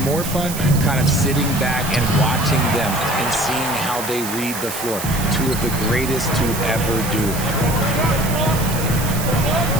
more fun kind of sitting back and watching them and seeing how they read the floor. Two of the greatest to ever do.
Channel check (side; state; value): right; noise; hiss, 8 dB below the sound